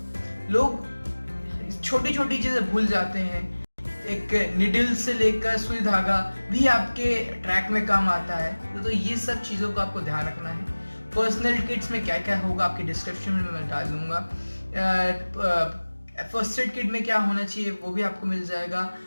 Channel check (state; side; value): inverted; both; correlation -1.00